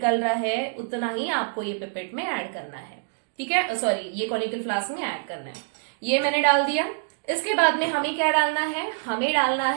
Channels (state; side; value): silent; left; digital silence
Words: रहा है, उतना ही आपको ये पिपेट में ऐड करना है। ठीक है, सॉरी, ये कॉनिकल फ्लास्क में ऐड करना है। ये मैंने डाल दिया। इसके बाद में हमें क्या डालना है, हमें डालना